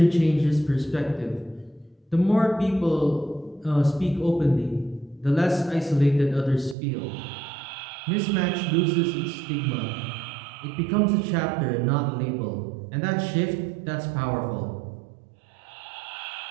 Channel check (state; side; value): drops out; left; at 6.8 s